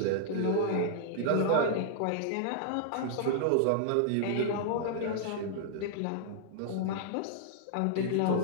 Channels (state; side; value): different; both; correlation -0.01